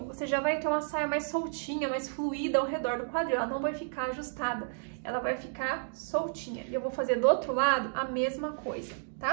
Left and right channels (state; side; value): silent; left; digital silence